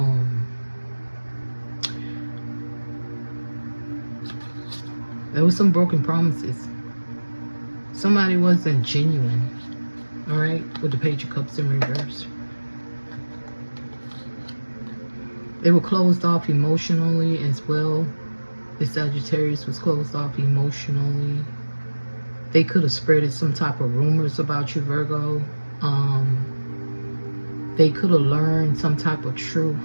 there was some broken promises. Somebody wasn't genuine. All right, with the Page of Cups in reverse. They were closed off emotionally as well. The Sagittarius was closed off emotionally. They could have spread some type of rumors about you, Virgo. They could have learned some type of truth.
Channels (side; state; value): both; inverted; correlation -1.00